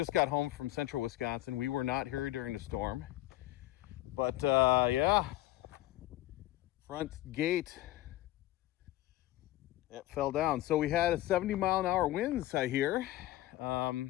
got home from central Wisconsin. We were not here during the storm. But yeah, front gate, it fell down. So we had a 70-mile-an-hour winds, I hear.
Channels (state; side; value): quieter; right; 16.2 dB